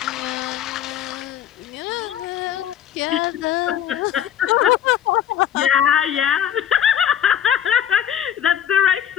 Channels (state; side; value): quieter; right; 10.1 dB